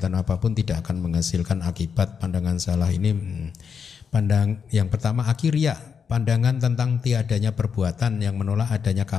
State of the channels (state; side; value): quieter; right; 6.5 dB